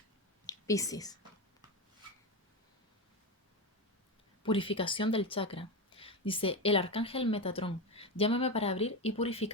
Piscis. Purificación del chakra. Dice, el arcángel Metatrón, llámame para abrir y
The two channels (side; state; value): both; normal; correlation 0.17